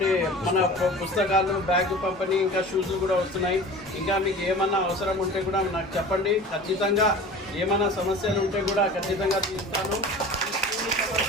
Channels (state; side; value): normal; both; correlation 0.39